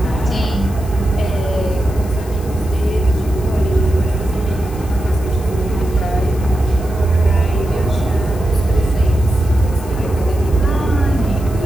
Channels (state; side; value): noise; left; hiss, 20 dB below the sound